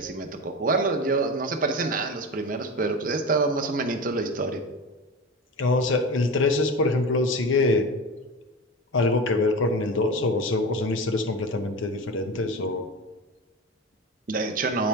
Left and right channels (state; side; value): normal; both; correlation 0.27